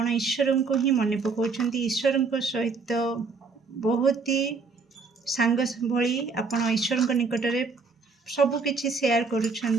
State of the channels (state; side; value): quieter; left; 4.5 dB